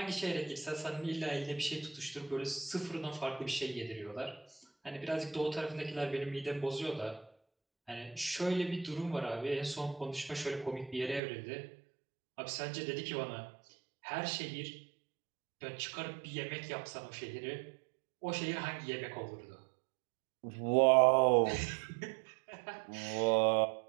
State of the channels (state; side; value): drops out; left; at 11.2 s